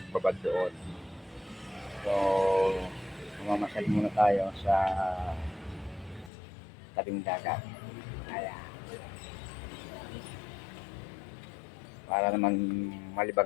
doon. So, mamasyal muna tayo sa tabing dagat. Ayan, para naman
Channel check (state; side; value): drops out; right; at 6.3 s